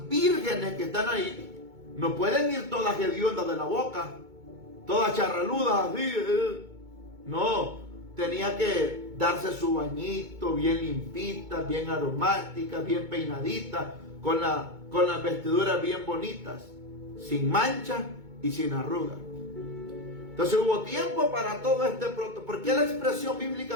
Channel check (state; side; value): late; left; 2.2 ms